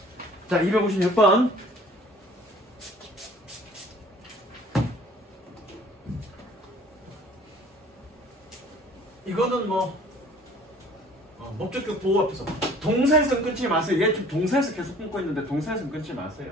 자, 256번. 이거는 뭐 목적격 보호 앞에서 동사에서 끊지 마세요. 얘 지금 동사에서 계속 끊고 있는데 동사에서 끊지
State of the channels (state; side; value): normal; both; correlation 0.52